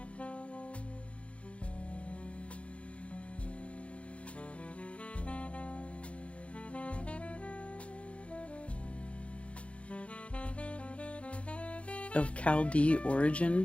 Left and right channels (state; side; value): late; right; 0.062 ms